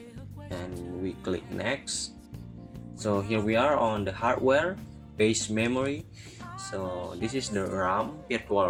and we click next. So here we are on the hardware base memory. So this is the RAM, virtual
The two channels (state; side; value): identical; both; correlation 1.00